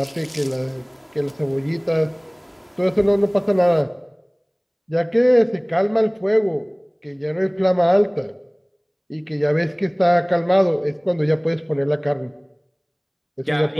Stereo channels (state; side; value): identical; both; correlation 1.00